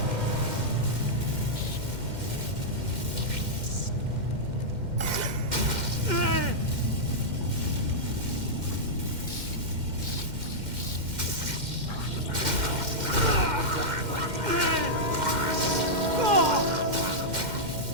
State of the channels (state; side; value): late; left; 2.1 ms